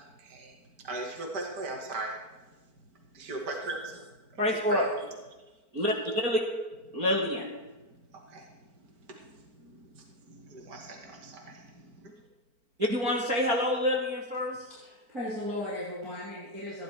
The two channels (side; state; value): left; late; 4.5 ms